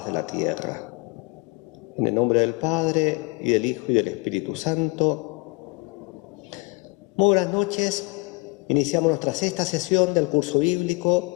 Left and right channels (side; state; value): right; quieter; 27.8 dB